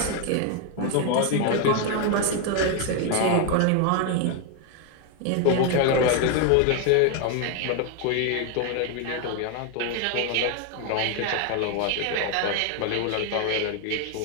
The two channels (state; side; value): different; both; correlation 0.01